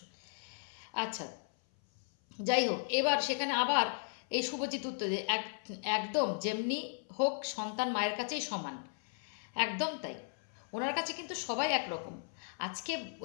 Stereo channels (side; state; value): right; silent; 54 dB below the other